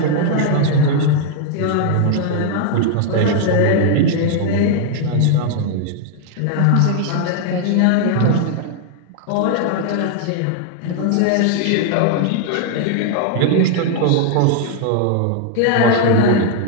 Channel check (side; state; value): both; different; correlation 0.00